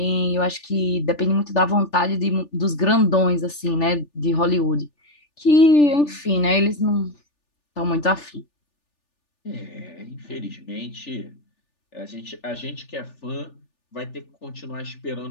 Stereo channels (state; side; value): late; right; 3.4 ms